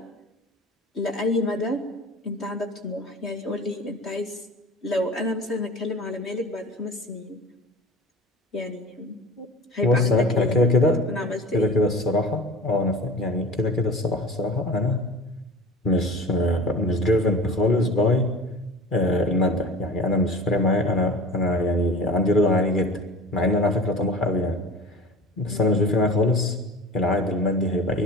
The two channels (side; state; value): both; normal; correlation 0.38